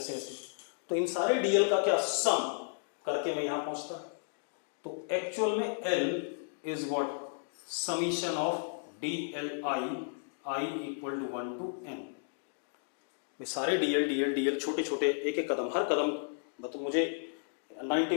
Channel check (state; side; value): silent; right; digital silence